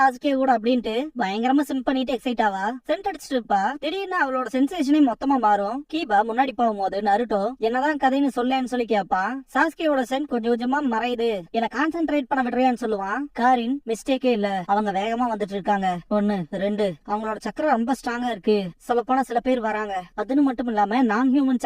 கூட அப்படின்ட்டு பயங்கரமா சிம் பண்ணிட்டு எக்ஸைட் ஆவா. சென்ட் அடிச்சுட்டு இருப்பா. திடீர்னு அவளோட சென்சேஷனே மொத்தமா மாறும். கீபா முன்னாடி போகும்போது நருட்டோ என்னதான் கதைன்னு சொல்லேன்னு சொல்லி கேப்பா. சாஸ்கேயோட சென்ட் கொஞ்சம் கொஞ்சமா மறையுது, என்ன கான்சென்ட்ரேட் பண்ண விடுறியான்னு சொல்லுவான். காரின் மிஸ்டேக்கே இல்ல, அவங்க வேகமா வந்துட்டு இருக்காங்க. 1 2 அவங்களோட சக்கரம் ரொம்ப ஸ்ட்ராங்கா இருக்கு. சொல்ல போனா சில பேர் வராங்க. அதுன்னு மட்டும் இல்லாம நான் ஹியூமன்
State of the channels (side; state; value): both; identical; correlation 1.00